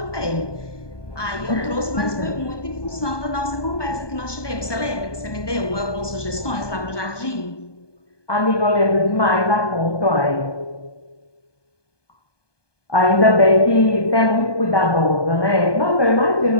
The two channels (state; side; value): late; right; 1.2 ms